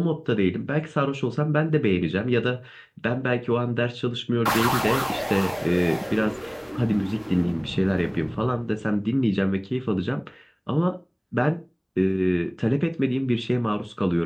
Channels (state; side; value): identical; both; correlation 1.00